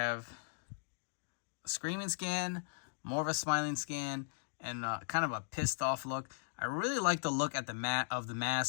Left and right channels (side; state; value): right; silent; digital silence